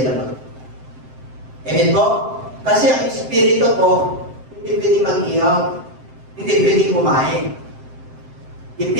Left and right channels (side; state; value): left; late; 7.7 ms